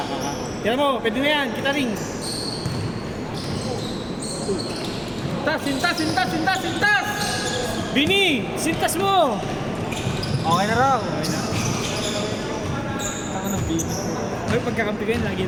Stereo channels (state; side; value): identical; both; correlation 1.00